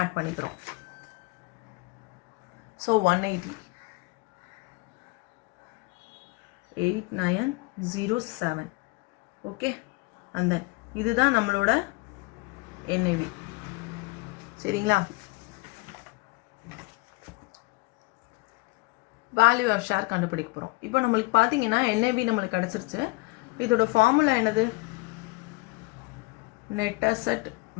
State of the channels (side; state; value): right; quieter; 24.7 dB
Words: பண்ணிக்கிறோம். ஸோ 180. 8907. ஓகே, அந்த இதுதான் நம்மளோட NAV. சரிங்களா? வேல்யூ ஆஃப் ஷேர் கண்டுபிடிக்க போகிறோம். இப்போ நம்மளுக்கு பார்த்தீங்கன்னா NAV நம்மளுக்கு கிடச்சிருச்சு. இதோட ஃபார்முலா என்னது? Net asset